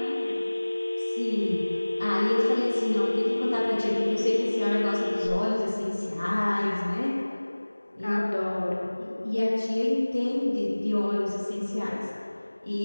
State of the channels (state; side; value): inverted; both; correlation -1.00